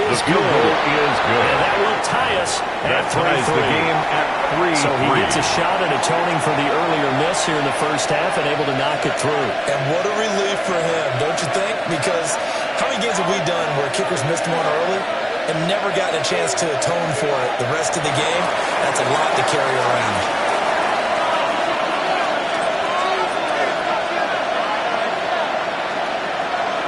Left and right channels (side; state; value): both; identical; correlation 1.00